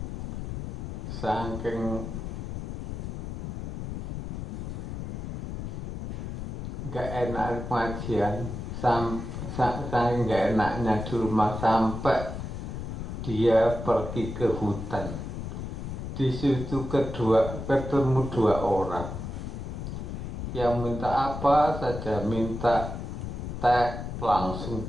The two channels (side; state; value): left; noise; rumble, 6 dB below the sound